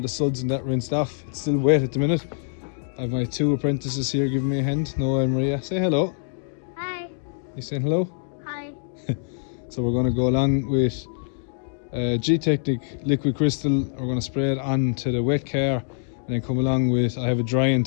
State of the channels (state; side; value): silent; right; digital silence